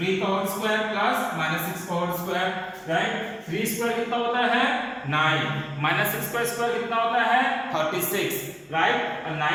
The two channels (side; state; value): both; identical; correlation 1.00